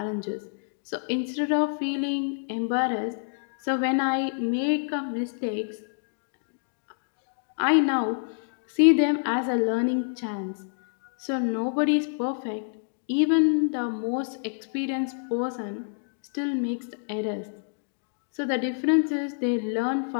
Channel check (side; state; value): right; silent; digital silence